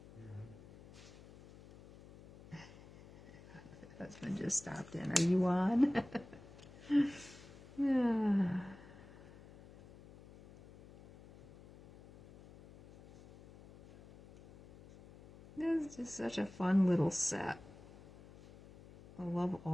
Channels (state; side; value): noise; left; hum, 20 dB below the sound